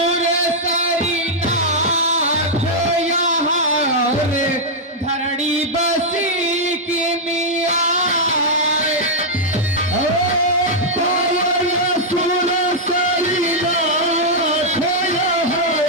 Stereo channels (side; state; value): both; normal; correlation -0.05